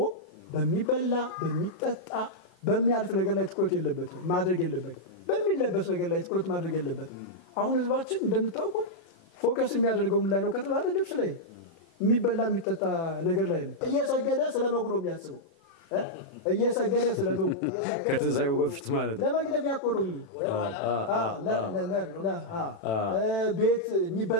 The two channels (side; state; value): right; late; 11 ms